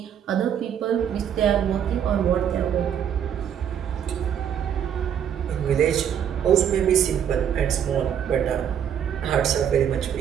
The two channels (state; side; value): quieter; left; 8.9 dB